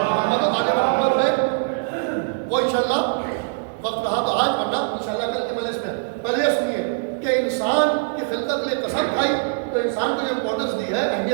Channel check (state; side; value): silent; left; 64 dB below the other